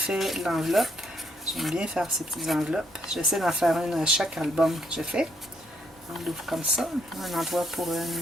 l'enveloppe. J'aime bien faire ces petites enveloppes. J'essaie d'en faire une à chaque album que je fais. On l'ouvre comme ça. Un endroit pour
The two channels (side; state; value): both; normal; correlation 0.73